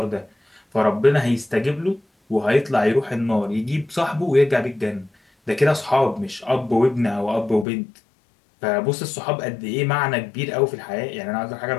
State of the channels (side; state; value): right; drops out; at 7.7 s